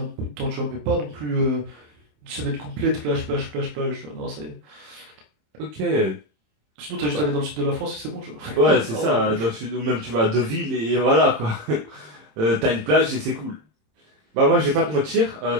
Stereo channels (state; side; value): late; left; 27 ms